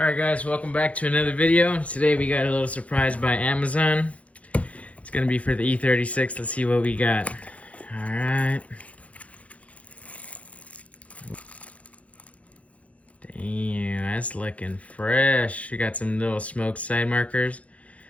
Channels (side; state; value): right; late; 0.065 ms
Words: guys, welcome back to another video. Today we got a little surprise by Amazon. It's gonna be for the E36. Let's see what we got. Alright. Damn, that's looking fresh. We got some little smoke side markers.